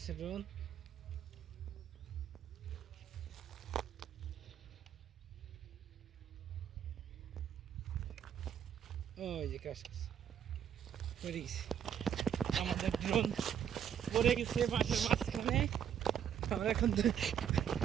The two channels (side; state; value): left; quieter; 8.9 dB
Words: ড্রোন। ওই যে ক্রাশ পড়ে গেছে আমাদের ড্রোন, পড়ে গেছে মাঠের মাঝখানে। আমরা এখন